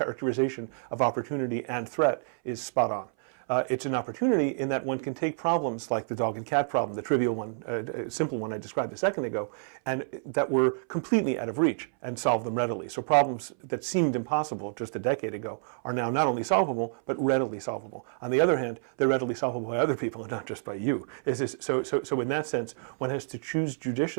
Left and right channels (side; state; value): left; silent; 59 dB below the other